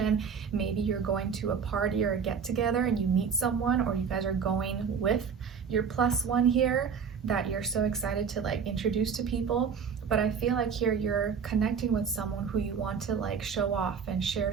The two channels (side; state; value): left; quieter; 6.5 dB